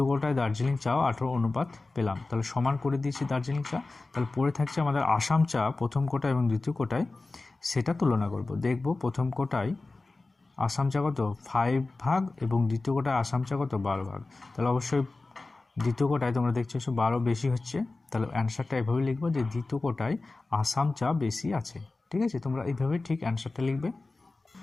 কোটায় দার্জিলিং চাও 18 অনুপাত পেলাম। তাহলে সমান করে দিয়েছি দার্জিলিং চা। তাহলে পড়ে থাকছে আমাদের আসাম চা প্রথম কোটায় এবং দ্বিতীয় কোটায়, সেটা তুলনা করব। দেখব প্রথম কোটায় আসাম চা কত 5 ভাগ এবং দ্বিতীয় কোটায় আসাম চা কত 12 ভাগ। তাহলে অবশ্যই দ্বিতীয় কোটায় তোমরা দেখছো 12 বেশি হচ্ছে। তাহলে অ্যান্সারটা এভাবে লিখবো যে দ্বিতীয় কোটায় আসাম চা বেশি আছে। ঠিক আছে, তোমরা এইভাবে ঠিক অ্যান্সারটা লিখবে।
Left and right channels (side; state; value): right; quieter; 3.4 dB